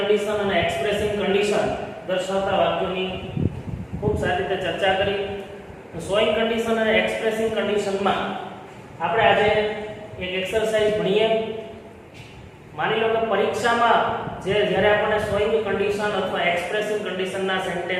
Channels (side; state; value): both; identical; correlation 1.00